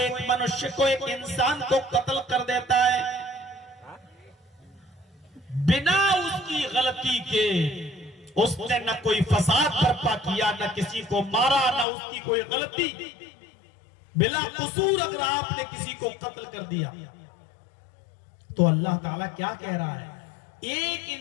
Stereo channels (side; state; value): right; drops out; at 11.9 s